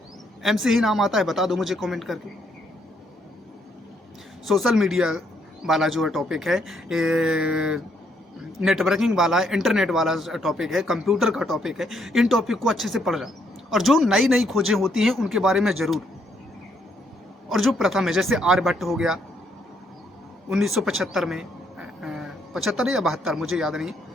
एम से ही नाम आता है, बता दो मुझे कमेंट करके। सोशल मीडिया वाला जो है टॉपिक है, नेटवर्किंग वाला है, इंटरनेट वाला टॉपिक है, कंप्यूटर का टॉपिक है, इन टॉपिक को अच्छे से पढ़ रहा, और जो नई खोजें होती हैं उनके बारे में ज़रूर, और जो प्रथम है जैसे आर्यभट्ट हो गया 1975 में, 75 या 72 मुझे याद नहीं,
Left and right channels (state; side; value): normal; both; correlation 0.72